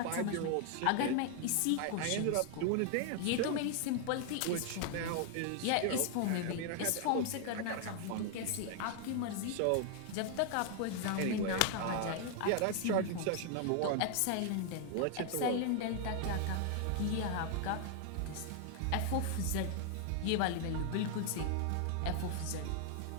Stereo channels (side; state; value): both; different; correlation 0.00